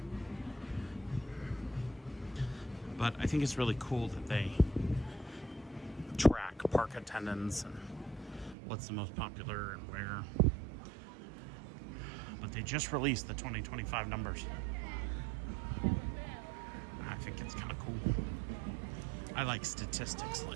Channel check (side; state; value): left; drops out; at 8.6 s